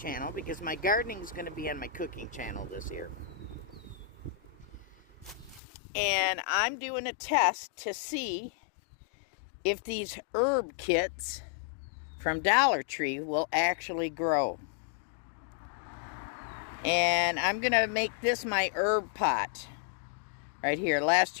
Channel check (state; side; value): drops out; right; at 5.6 s